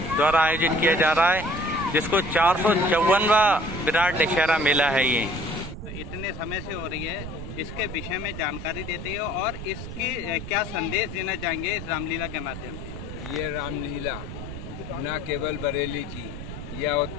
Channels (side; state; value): right; noise; rumble, 9 dB below the sound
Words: आयोजित किया जा रहा है, जिसको 454वां विराट दशहरा मेला है। ये इतने समय से हो रही है, इसके विषय में जानकारी देते हैं और इसकी क्या संदेश देना चाहेंगे इस रामलीला के माध्यम से? ये रामलीला न केवल बरेली की या